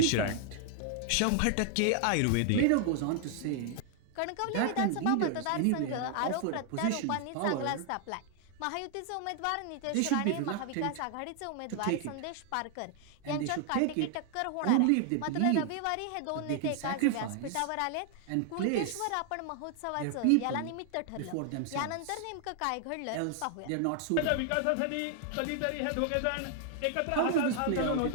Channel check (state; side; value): different; both; correlation 0.00